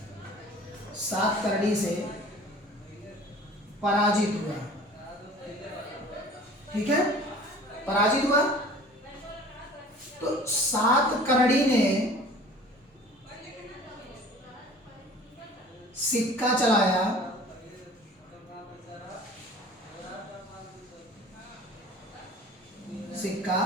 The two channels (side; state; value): both; normal; correlation 0.46